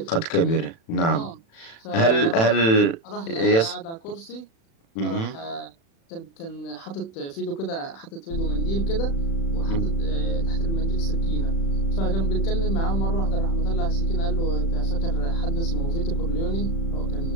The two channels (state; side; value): late; right; 36 ms